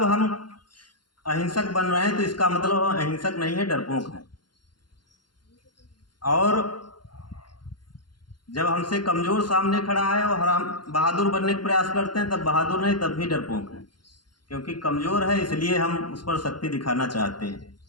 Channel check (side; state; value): right; late; 0.71 ms